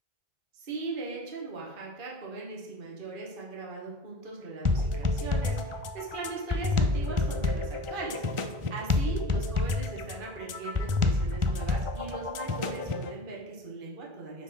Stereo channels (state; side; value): late; left; 1.4 ms